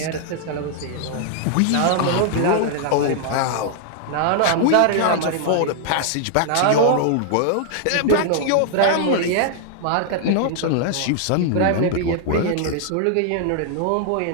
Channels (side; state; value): both; different; correlation -0.01